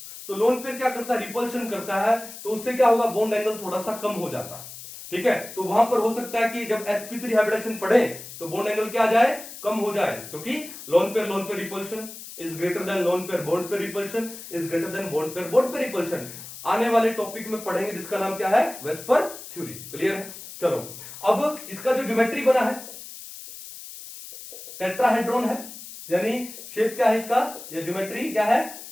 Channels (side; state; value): left; noise; hiss, 13 dB below the sound